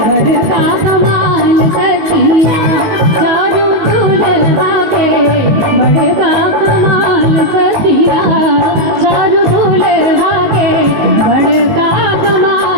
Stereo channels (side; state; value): left; late; 19 ms